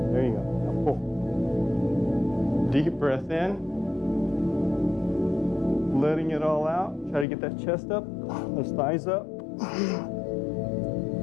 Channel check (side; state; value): right; drops out; at 7.2 s